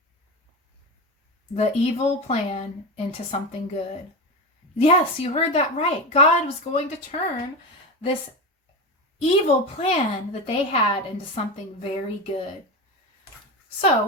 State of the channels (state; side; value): normal; both; correlation 0.20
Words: the evil plan into something good. Yes, you heard that right. God was going to turn this evil plan that they had into something very good. So